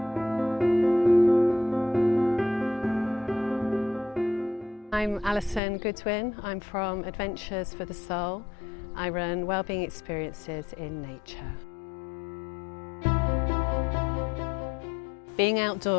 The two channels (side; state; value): right; drops out; at 5.6 s